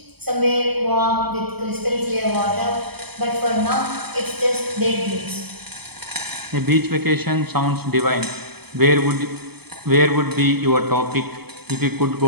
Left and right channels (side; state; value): left; late; 0.97 ms